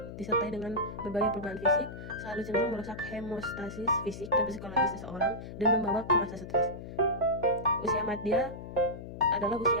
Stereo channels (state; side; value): noise; left; hum, 11 dB below the sound